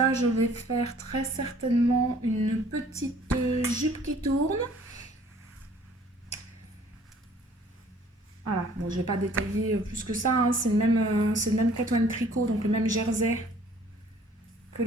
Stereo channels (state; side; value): normal; both; correlation 0.56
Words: je vais faire très certainement une petite jupe qui tourne. Voilà, bon, je ne vais pas détailler plus que ça. Hein. C'est le même Kato & Tricot, donc le même jersey que